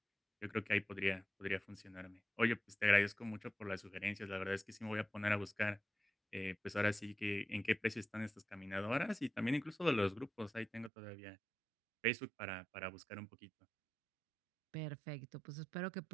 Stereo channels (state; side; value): drops out; left; at 10.9 s